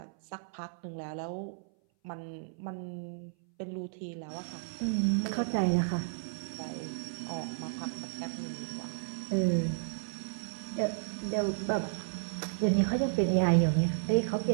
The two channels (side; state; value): left; silent; 56 dB below the other